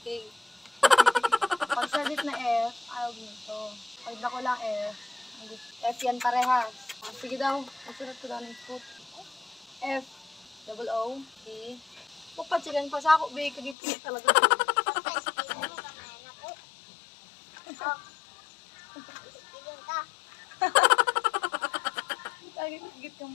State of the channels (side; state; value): right; drops out; at 13.8 s